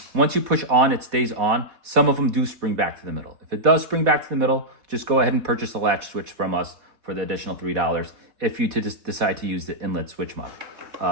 Once you push on, it stays on. Some of them do spring back to the middle. If it does spring back to the middle, just go ahead and purchase a latch switch from us for the additional $3 if you just decide to use the inlet switch mod.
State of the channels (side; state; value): left; late; 4.1 ms